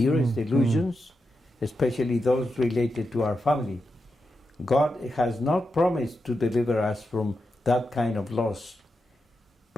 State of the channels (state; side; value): normal; both; correlation 0.88